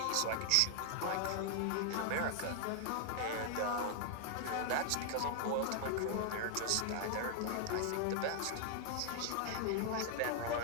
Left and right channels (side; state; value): both; different; correlation 0.00